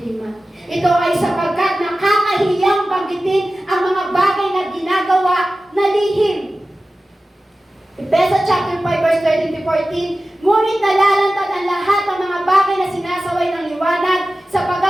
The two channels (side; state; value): both; normal; correlation 0.95